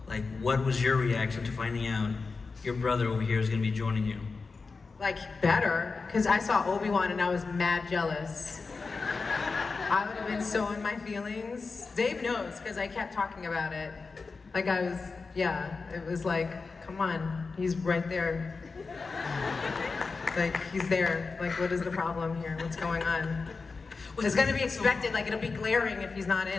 like what was your reaction to finding out your brother over here is going to be joining you? Like, better, because I saw Obi-Wan and I was mad jealous. I would have been so in my feelings. Dave knows, because I kept talking about it. Like it was like, come on, he's right there. Like, he's there. Like, what is the problem here? What's going on? It's gonna be expected, like it'll be glaring if he's not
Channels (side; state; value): right; quieter; 4.4 dB